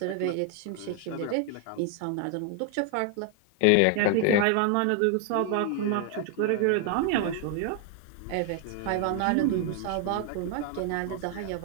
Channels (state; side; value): different; both; correlation 0.00